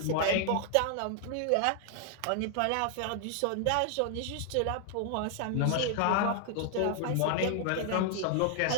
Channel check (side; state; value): both; different; correlation 0.00